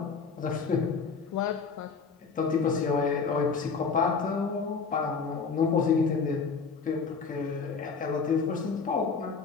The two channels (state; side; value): quieter; right; 5.2 dB